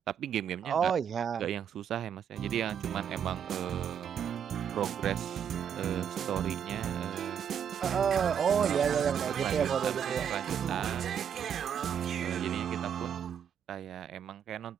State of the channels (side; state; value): left; quieter; 8.3 dB